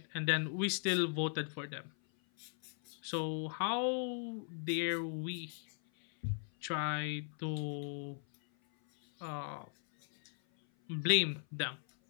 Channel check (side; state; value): right; silent; 53 dB below the other